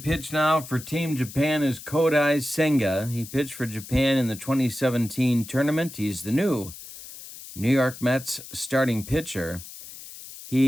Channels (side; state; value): left; noise; hiss, 14 dB below the sound